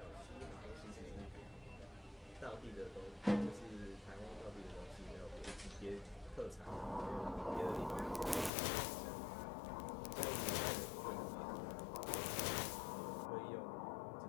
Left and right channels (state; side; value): drops out; right; at 8.5 s